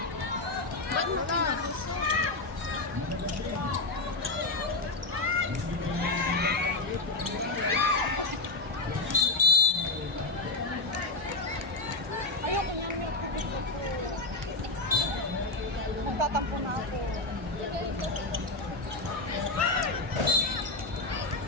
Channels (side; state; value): right; quieter; 3.1 dB